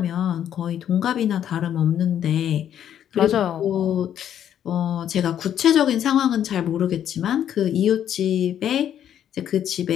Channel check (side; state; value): right; quieter; 10.0 dB